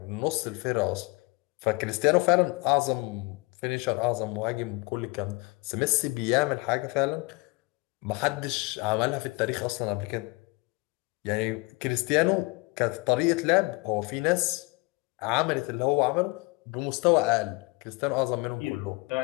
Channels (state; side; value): quieter; right; 26.6 dB